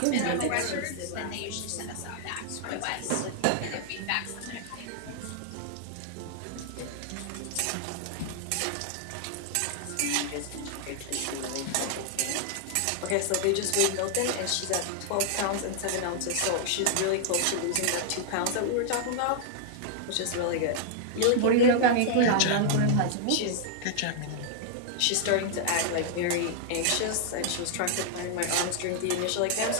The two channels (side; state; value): both; different; correlation -0.01